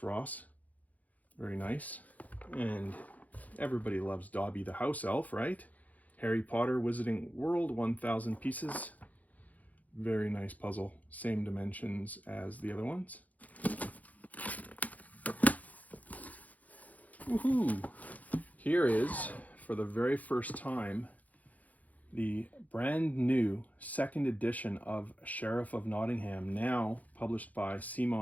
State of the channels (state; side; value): late; right; 0.076 ms